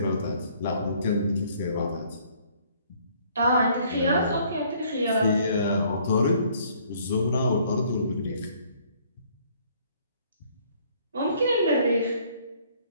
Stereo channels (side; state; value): both; inverted; correlation -0.61